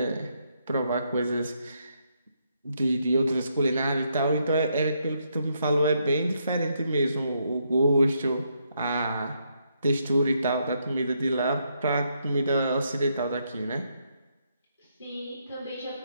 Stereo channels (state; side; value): inverted; both; correlation -0.76